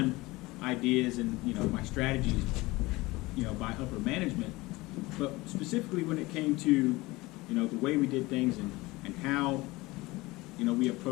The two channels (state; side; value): quieter; right; 21.1 dB